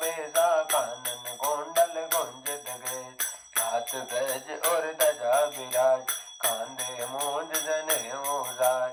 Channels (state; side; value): identical; both; correlation 1.00